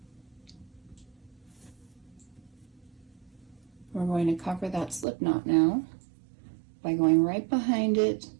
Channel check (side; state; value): left; drops out; at 5.1 s